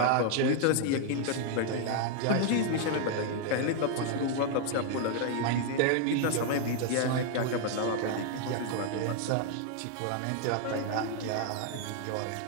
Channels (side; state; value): both; different; correlation 0.00